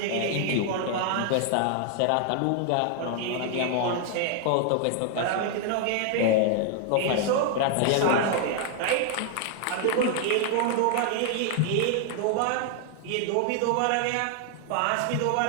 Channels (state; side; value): different; both; correlation 0.00